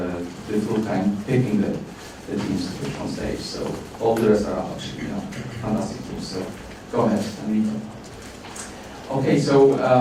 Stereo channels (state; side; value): identical; both; correlation 1.00